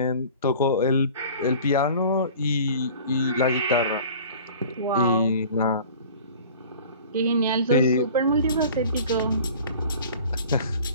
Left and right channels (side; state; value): both; inverted; correlation -0.44